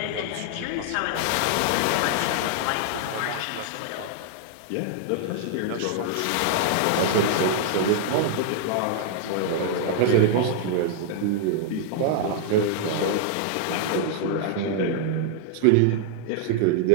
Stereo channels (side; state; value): both; different; correlation -0.01